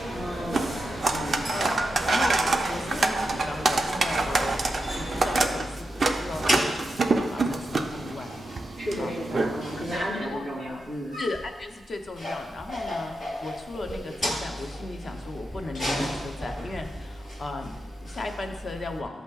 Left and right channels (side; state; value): both; normal; correlation 0.88